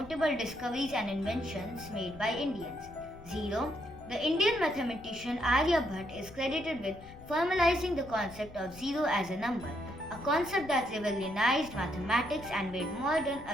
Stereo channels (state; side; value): noise; left; rumble, 18 dB below the sound